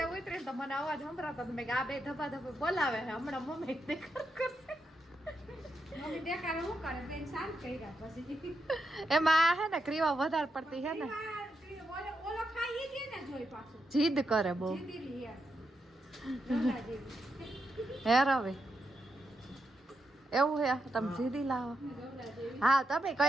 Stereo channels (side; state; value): both; normal; correlation 0.84